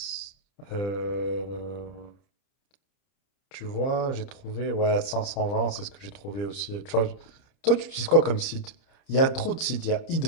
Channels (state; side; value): late; right; 30 ms